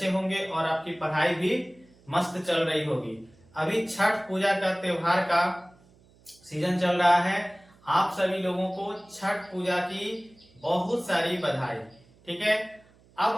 होंगे और आपकी पढ़ाई भी मस्त चल रही होगी। अभी छठ पूजा का त्योहार का सीजन चल रहा है। आप सभी लोगों को छठ पूजा की बहुत सारी बधाई। ठीक है, अब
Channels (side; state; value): right; noise; hum, 29 dB below the sound